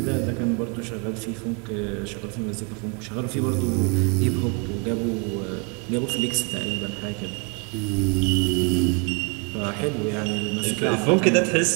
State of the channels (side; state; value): left; quieter; 34.5 dB